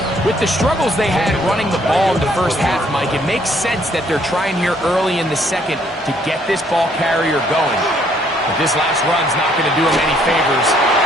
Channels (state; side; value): normal; both; correlation 0.66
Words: With the struggles they had running the ball in the first half, Mike, it makes sense that they're trying here early in the second to get this ball carrier going. But this last run's not going to do him any favors.